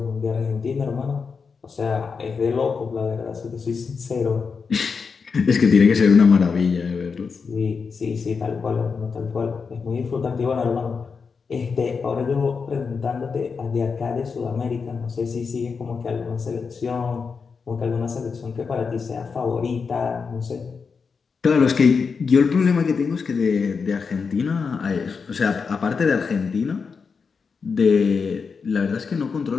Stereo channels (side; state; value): right; quieter; 5.4 dB